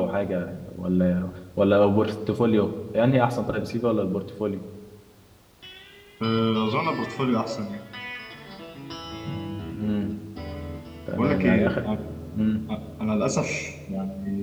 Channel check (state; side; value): identical; both; correlation 1.00